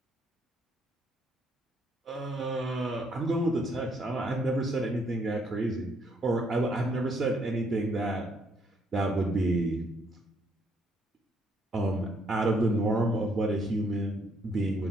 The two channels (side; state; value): both; normal; correlation 0.70